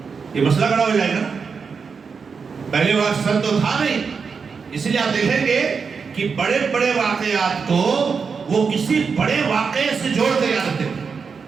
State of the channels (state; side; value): quieter; left; 5.5 dB